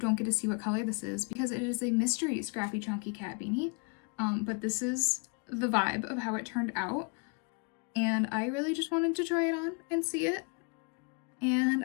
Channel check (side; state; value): right; quieter; 35.0 dB